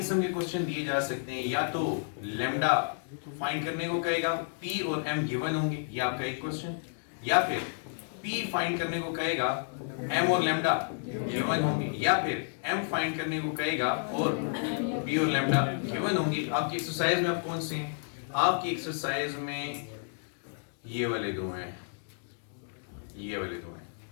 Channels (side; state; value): right; silent; digital silence